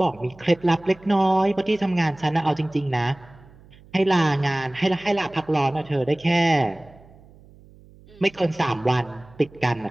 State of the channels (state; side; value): noise; right; hum, 25 dB below the sound